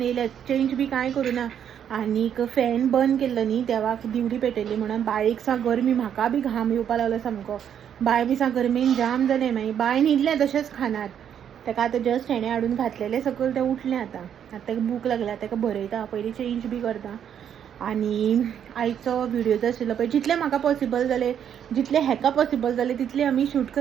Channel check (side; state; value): left; quieter; 9.0 dB